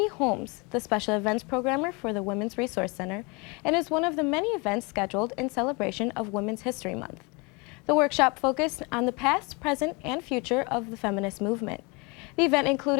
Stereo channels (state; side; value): quieter; right; 29.1 dB